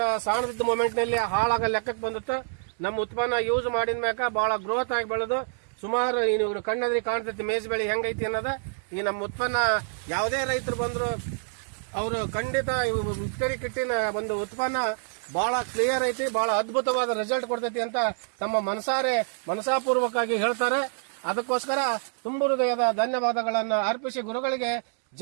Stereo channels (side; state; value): left; silent; digital silence